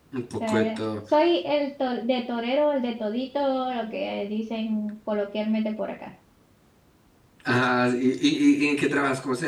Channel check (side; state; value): both; identical; correlation 1.00